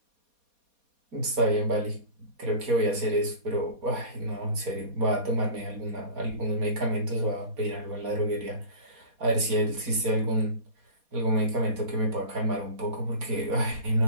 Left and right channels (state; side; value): late; left; 4.2 ms